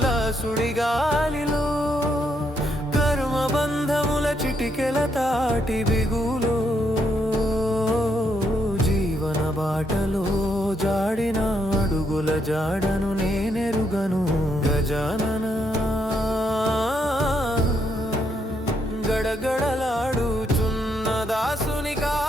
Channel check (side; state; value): both; normal; correlation 0.76